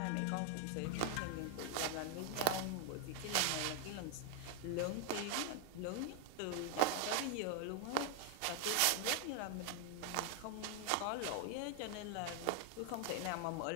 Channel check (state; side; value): different; both; correlation 0.00